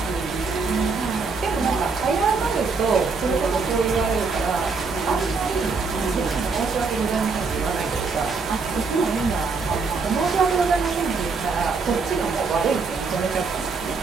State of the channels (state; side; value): quieter; left; 4.6 dB